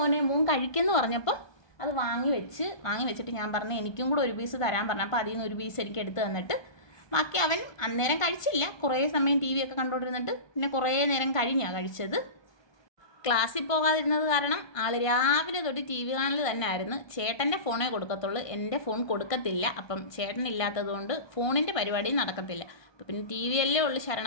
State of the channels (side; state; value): right; late; 1.2 ms